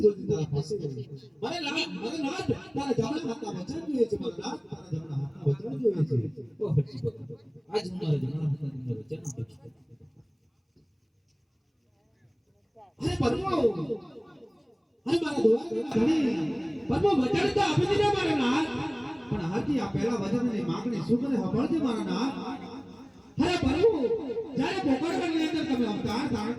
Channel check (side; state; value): both; identical; correlation 1.00